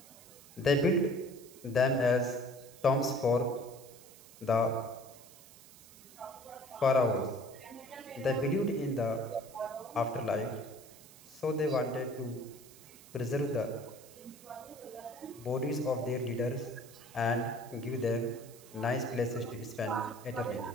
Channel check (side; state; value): right; noise; hiss, 20 dB below the sound